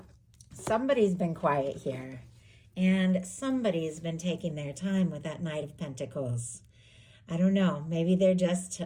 somebody's been quiet here, and somebody's been taking their time with that Knight of Pentacles. I don't know. Maybe they're just,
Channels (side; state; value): both; identical; correlation 1.00